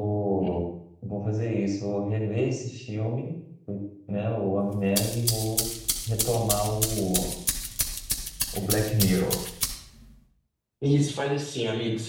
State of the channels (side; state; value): both; identical; correlation 1.00